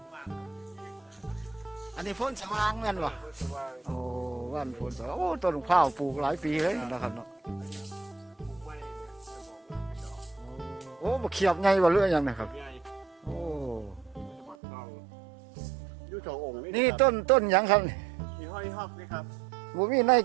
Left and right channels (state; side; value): drops out; left; at 14.6 s